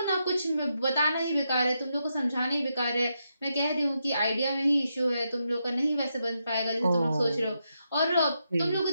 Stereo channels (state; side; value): inverted; both; correlation -0.83